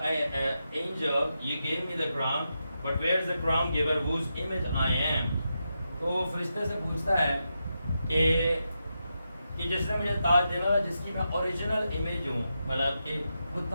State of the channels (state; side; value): inverted; both; correlation -0.87